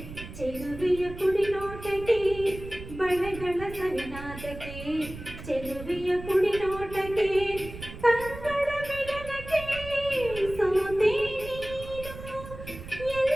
ಚೆಲುವೆಯ ಕುಡಿನೋಟಕ್ಕೆ ಬಳೆಗಳ ಸವಿನಾದಕ್ಕೆ ಚೆಲುವೆಯ ಕುಡಿನೋಟಕ್ಕೆ ಕಂಗಳ ಮಿಲನಕ್ಕೆ ಸೋತೆ ನೀನು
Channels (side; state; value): right; noise; rumble, 12 dB below the sound